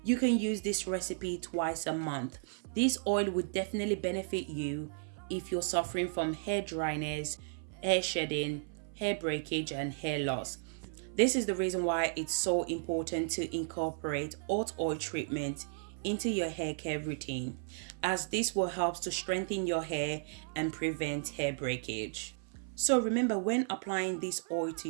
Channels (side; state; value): left; silent; 55 dB below the other